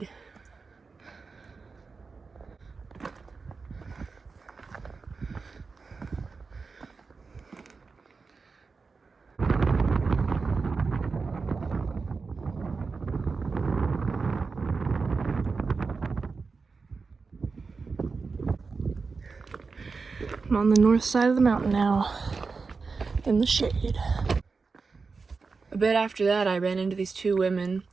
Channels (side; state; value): left; quieter; 4.6 dB